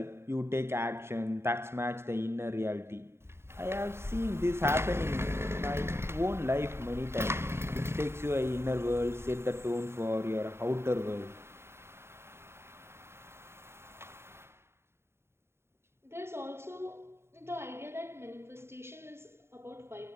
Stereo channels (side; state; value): left; late; 0.12 ms